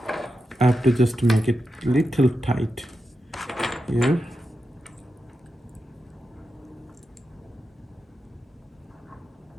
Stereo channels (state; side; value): normal; both; correlation 0.89